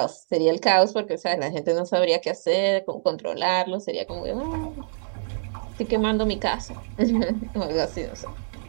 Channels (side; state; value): left; silent; digital silence